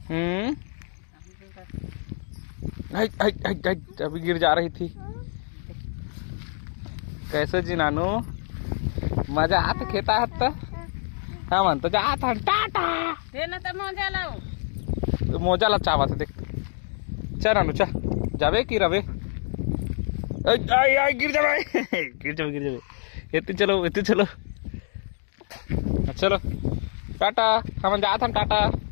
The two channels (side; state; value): right; silent; 58 dB below the other